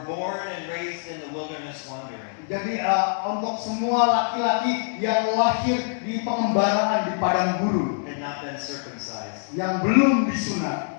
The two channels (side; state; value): right; silent; digital silence